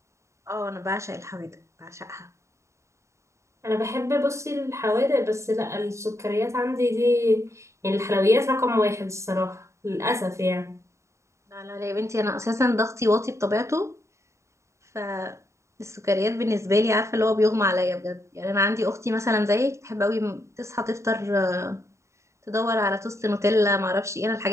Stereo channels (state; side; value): late; left; 0.14 ms